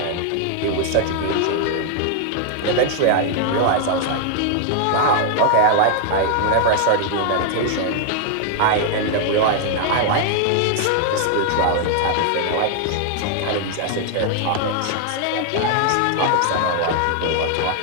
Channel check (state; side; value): different; both; correlation 0.00